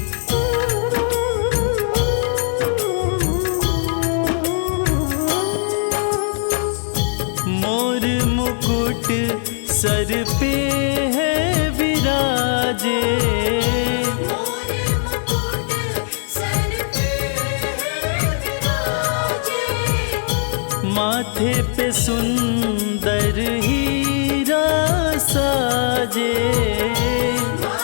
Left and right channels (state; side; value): silent; right; 65 dB below the other